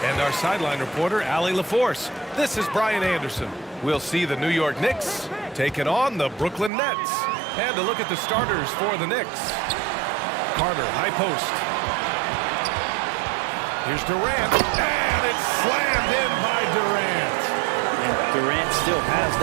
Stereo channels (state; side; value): drops out; left; at 6.7 s